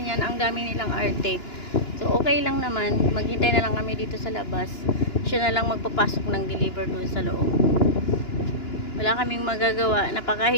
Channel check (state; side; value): late; right; 2.9 ms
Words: Ang dami nilang arte. So okay lang naman, maghintay na lang kami dito sa labas. Siya na lang magpapasok ng deliver doon sa loob. Wala kaming magagawa,